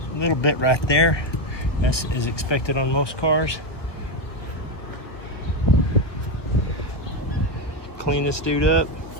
little bit right there. As is expected on most cars. Clean this dude up.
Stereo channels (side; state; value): right; late; 1.6 ms